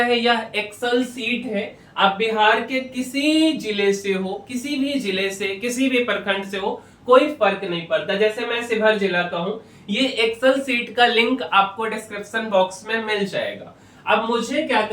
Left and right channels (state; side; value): identical; both; correlation 1.00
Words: है, यह एक्सेल सीट है। आप बिहार के किसी जिले से हो, किसी भी जिले से, किसी भी प्रखंड से हो, कोई फर्क नहीं पड़ता। जैसे मैं शिवहर जिला का हूं, ये एक्सेल सीट का लिंक आपको डिस्क्रिप्शन बॉक्स में मिल जाएगा। अब मुझे क्या